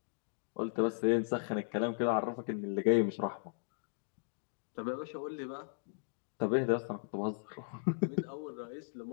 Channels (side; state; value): right; silent; digital silence